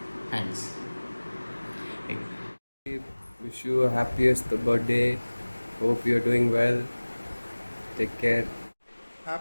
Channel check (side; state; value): both; inverted; correlation -1.00